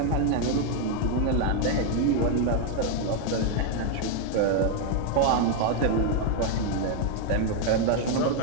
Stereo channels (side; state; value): both; different; correlation 0.00